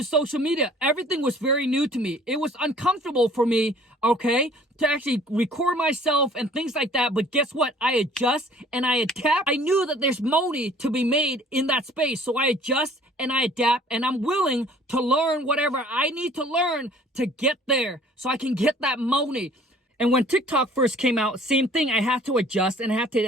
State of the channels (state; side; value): normal; both; correlation 0.53